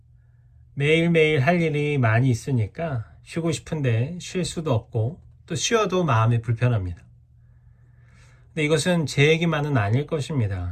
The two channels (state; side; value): identical; both; correlation 1.00